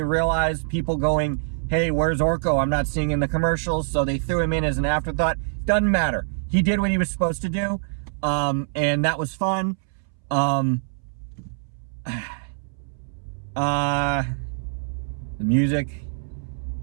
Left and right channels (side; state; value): left; silent; 62 dB below the other